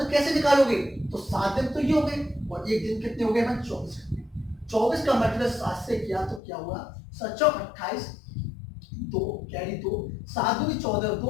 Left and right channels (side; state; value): right; drops out; at 6.4 s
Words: कैसे निकालोगे? तो 7 दिन तो ये हो गए और एक दिन कितने हो गए? 24 घंटे। 24 का मल्टीप्लाई 7 से किया तो क्या हुआ? 7 × 28, 2 कैरी 2, 7 × 2 = 14,